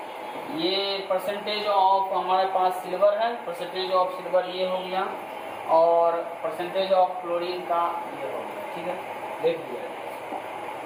ये परसेंटेज ऑफ हमारे पास सिल्वर है, परसेंटेज ऑफ सिल्वर ये हो गया, और परसेंटेज ऑफ क्लोरीन का ये हो गया, ठीक है, देख लिया।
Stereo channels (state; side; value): identical; both; correlation 1.00